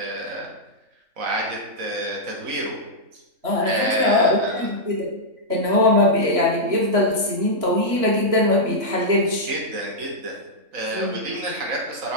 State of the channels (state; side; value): late; left; 3.5 ms